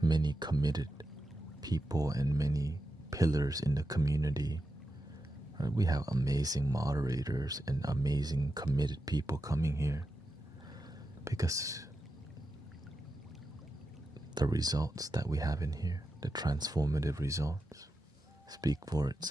many committed people and many pillars in the community. We have amazing moderators and amazing committed people coming here because the results that we have in here, the transformative results, speak for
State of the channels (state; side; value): normal; both; correlation 0.88